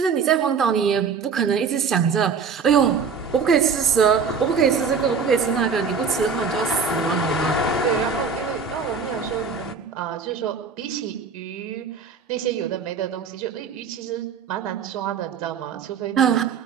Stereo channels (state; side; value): quieter; left; 5.8 dB